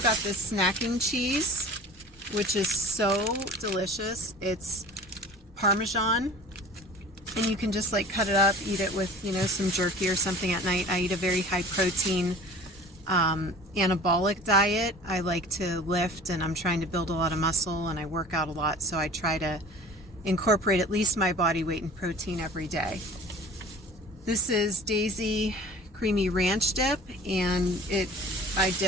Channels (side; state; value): both; normal; correlation 0.43